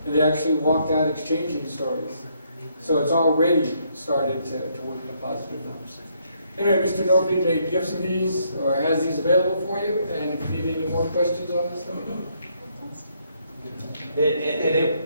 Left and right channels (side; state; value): both; inverted; correlation -0.72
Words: And they actually walked out exchanging stories. So it's already started to work in a positive manner. Anyway, Mr. Norby made gifts of these, or has these available for you, and if you need any more questions on this, let me know.